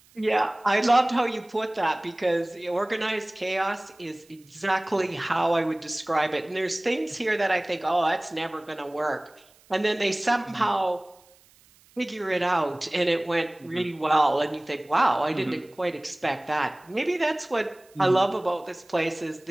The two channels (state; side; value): noise; right; hiss, 29 dB below the sound